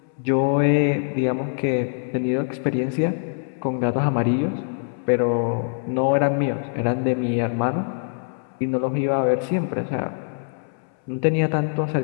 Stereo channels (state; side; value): silent; right; 63 dB below the other